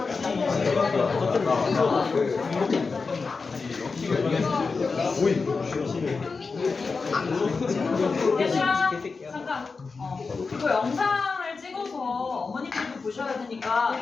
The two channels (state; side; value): quieter; right; 4.5 dB